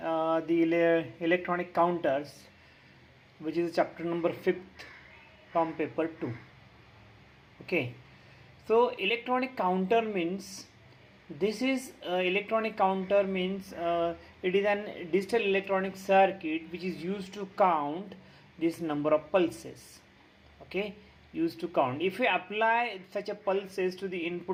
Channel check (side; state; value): both; identical; correlation 1.00